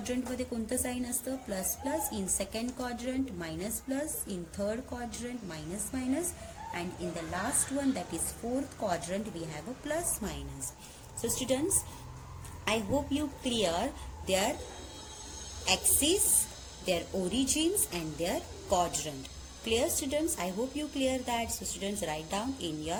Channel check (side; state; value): both; identical; correlation 1.00